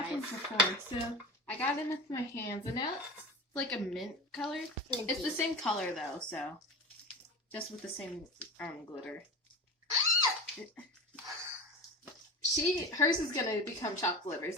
mine. before, so I got it with my hands, and now it's like a mint color. It's the same color, though, so just with the same glitter. Hers is gonna become chocolate livers.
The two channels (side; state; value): both; normal; correlation 0.29